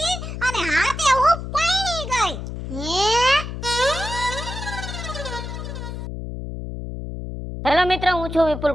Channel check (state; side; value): noise; left; hum, 7 dB below the sound